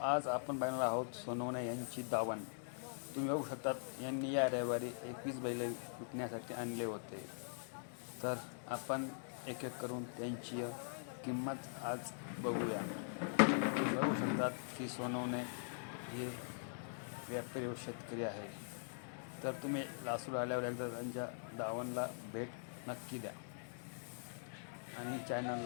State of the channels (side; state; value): right; silent; digital silence